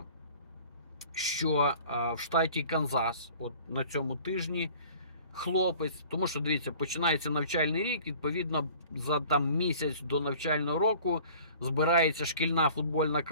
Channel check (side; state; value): both; inverted; correlation -0.48